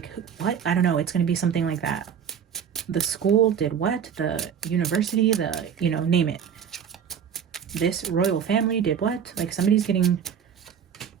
what? I don't know. It's going to be something like that. The school did what? The university, name it. This royal family did what? Like somebody's getting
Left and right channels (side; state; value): left; quieter; 7.9 dB